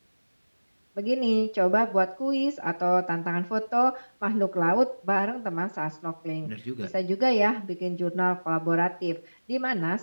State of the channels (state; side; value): inverted; both; correlation -1.00